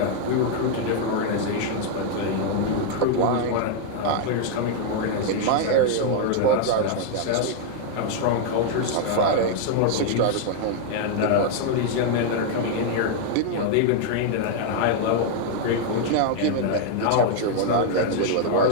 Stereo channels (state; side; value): different; both; correlation 0.00